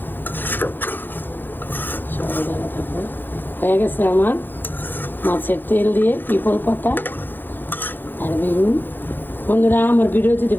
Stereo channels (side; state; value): right; late; 0.093 ms